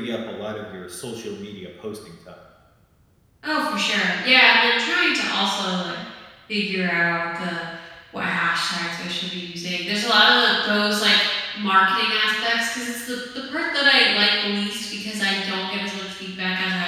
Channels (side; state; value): both; identical; correlation 1.00